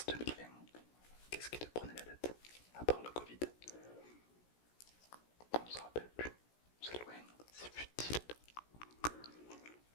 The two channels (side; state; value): right; late; 17 ms